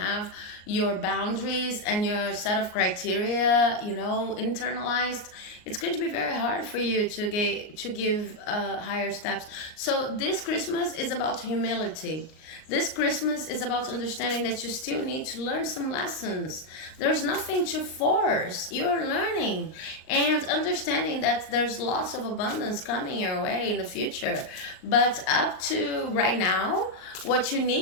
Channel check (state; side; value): late; right; 38 ms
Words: your boundaries and your set of criteria, internalized, it's going to be very hard for you to give higher steps. So this Christmas is about humility. This Christmas is about understanding that you still need to learn some lessons. There's nothing to force. You're learning and understanding that there's lots of abundance coming your way in the future. But up to right now, what you